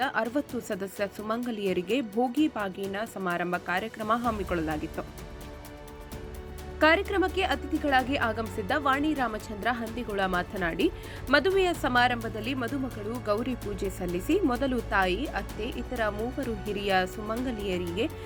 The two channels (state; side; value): identical; both; correlation 1.00